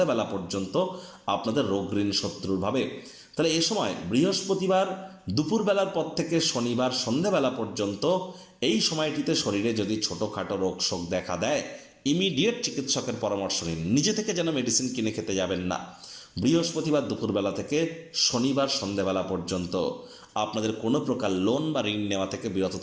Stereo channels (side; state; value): both; identical; correlation 1.00